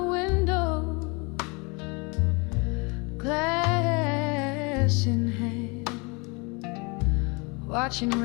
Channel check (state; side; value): quieter; right; 29.9 dB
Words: glass in hand, watching